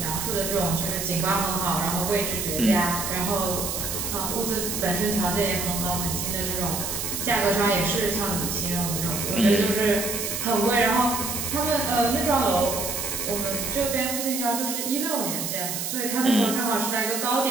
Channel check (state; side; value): noise; right; hiss, 3 dB below the sound